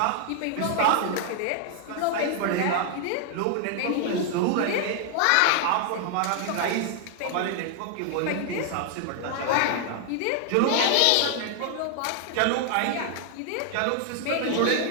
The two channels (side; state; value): both; different; correlation 0.00